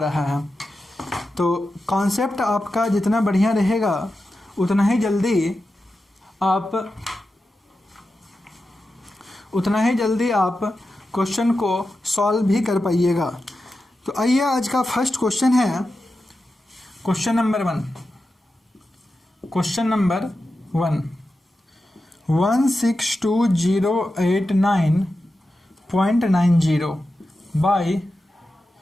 है। तो कॉन्सेप्ट आपका जितना बढ़िया रहेगा उतना ही जल्दी आप क्वेश्चन को सॉल्व भी कर पाइएगा। तो आइए आज का फर्स्ट क्वेश्चन है क्वेश्चन नंबर 1। 162,089.90 बाई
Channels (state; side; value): normal; both; correlation 0.91